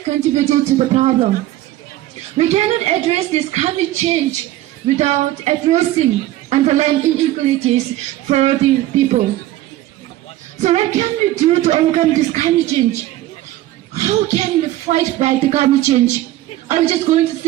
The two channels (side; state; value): left; quieter; 15.1 dB